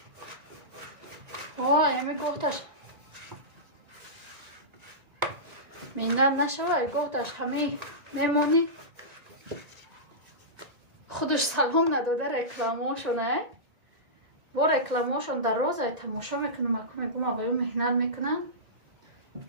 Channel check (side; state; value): left; late; 1.9 ms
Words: همی گفتش میندر نشوه گفتش همی میمونی خودش سلام نداده رکلاماشونه با رکلاماشون در روز تماشا میکنم اکو میگم آقایون مهنت میکنن